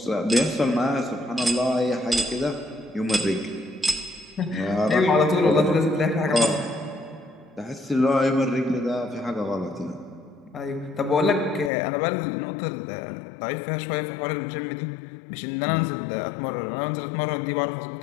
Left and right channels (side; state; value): right; drops out; at 11.7 s